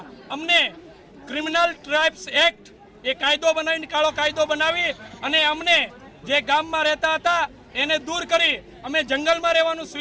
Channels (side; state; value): both; identical; correlation 1.00